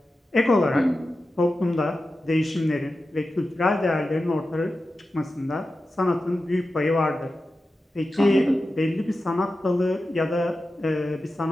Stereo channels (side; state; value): both; normal; correlation 0.93